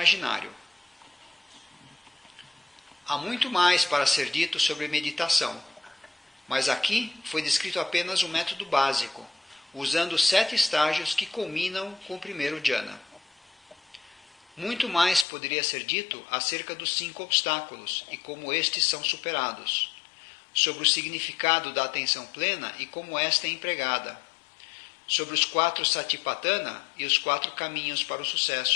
Há muito mais para ser dito sobre meditação, mas aqui foi descrito apenas o método básico, usando 7 estágios que culminam com o primeiro jhana. Muito mais poderia ser dito acerca dos 5 obstáculos e como estes são superados, sobre o significado da atenção plena e como esta é empregada, sobre os 4 satipatthana e os 4 caminhos para o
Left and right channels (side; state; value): right; drops out; at 15.2 s